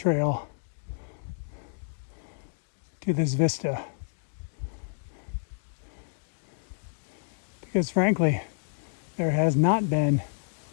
to this vista because frankly there has not been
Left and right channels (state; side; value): silent; right; digital silence